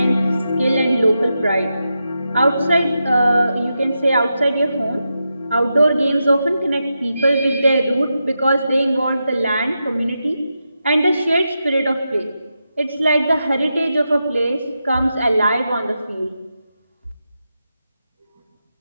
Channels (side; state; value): both; inverted; correlation -0.88